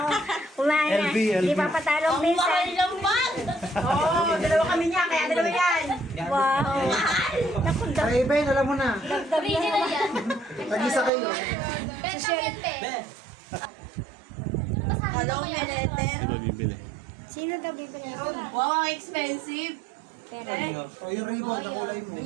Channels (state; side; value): drops out; left; at 11.1 s